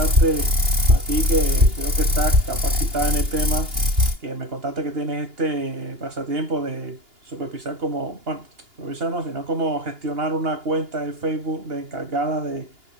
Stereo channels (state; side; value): late; left; 2.9 ms